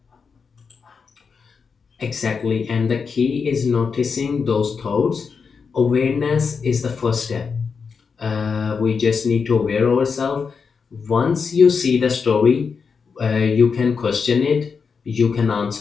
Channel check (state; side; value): quieter; right; 5.6 dB